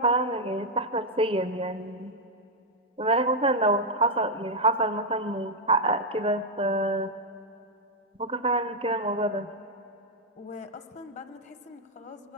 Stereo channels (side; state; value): both; normal; correlation -0.01